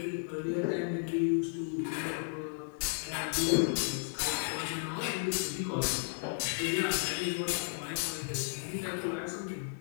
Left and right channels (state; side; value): silent; right; digital silence